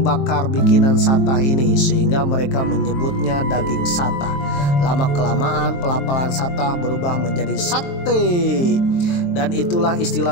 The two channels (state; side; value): late; right; 23 ms